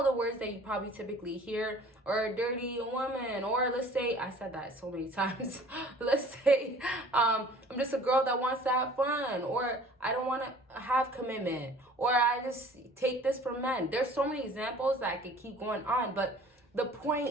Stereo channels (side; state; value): both; normal; correlation 0.50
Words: the words that you probably typically hear, or a dirty woman, or let's say, I said that so many times, let's say I'm just a girl that wants to have fun, or I don't want to have commitment, or I just take this from men. There's so many examples that I could keep going on, but the